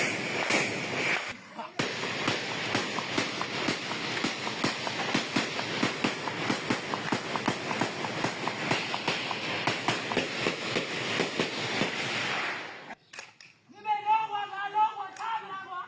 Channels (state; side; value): identical; both; correlation 1.00